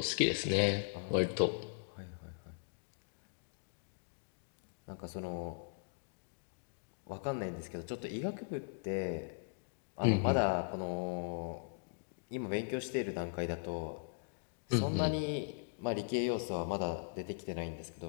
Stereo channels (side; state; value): right; silent; digital silence